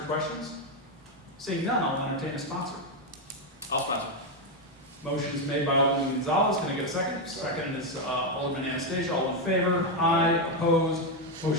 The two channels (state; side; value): normal; both; correlation 0.05